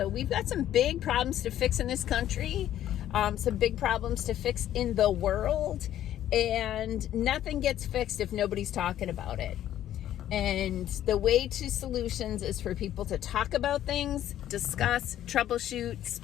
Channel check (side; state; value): right; quieter; 11.9 dB